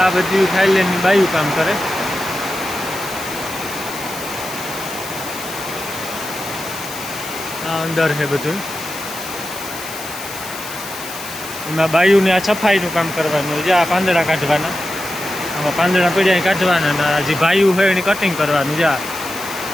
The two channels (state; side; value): noise; left; hiss, 11 dB below the sound